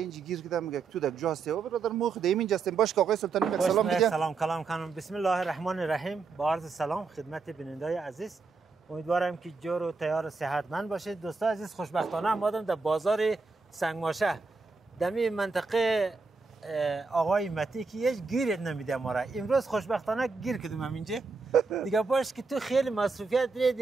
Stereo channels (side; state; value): left; quieter; 4.4 dB